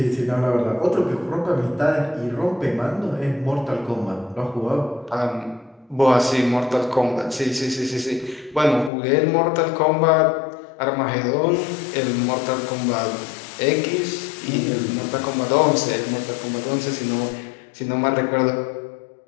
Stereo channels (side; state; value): right; drops out; at 8.9 s